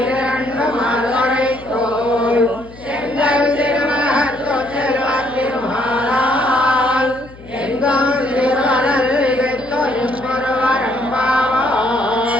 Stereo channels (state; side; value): noise; left; hum, 20 dB below the sound